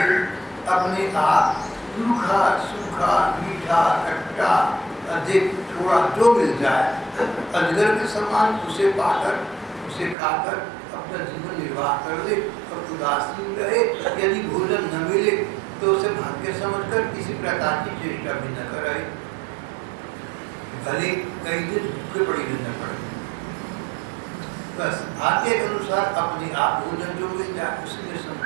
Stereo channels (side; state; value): left; drops out; at 10.2 s